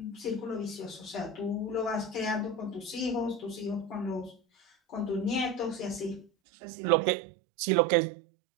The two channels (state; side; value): drops out; left; at 6.2 s